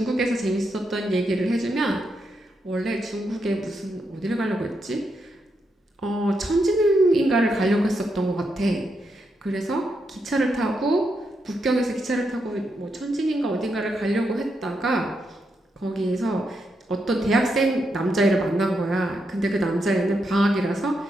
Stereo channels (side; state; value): both; normal; correlation 0.82